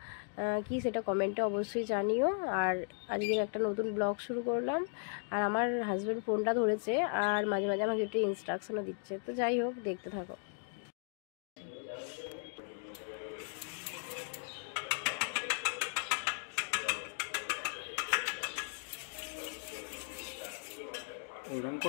কি সেটা কমেন্টে অবশ্যই জানিও। আর আজকের একটা নতুন ব্লগ শুরু করলাম। আর আমার হাজব্যান্ড ফোনটা ধরেছে আর মাঝে মাঝে আমাকে একটু ইনস্ট্রাকশনও দিচ্ছে। তো যাই হোক, দেখতে থাকো। ওরকম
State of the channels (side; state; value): right; silent; 53 dB below the other